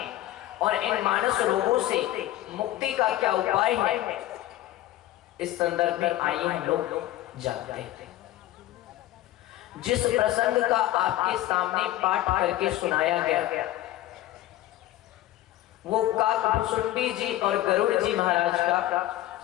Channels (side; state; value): right; quieter; 14.7 dB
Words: और इन मानस रोगों से मुक्ति का क्या उपाय है, इस संदर्भ में आइए हम लोग जानते हैं। जिस प्रसंग का आपके सामने पाठ करके सुनाया गया, वो काकभुसुंडी जी और गरुड़ जी महाराज का